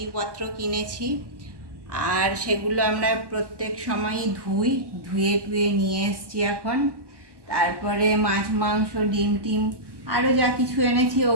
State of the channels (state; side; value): late; left; 1.1 ms